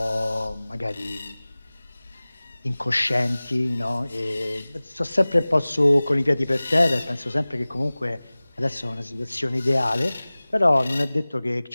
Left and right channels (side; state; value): both; inverted; correlation -0.99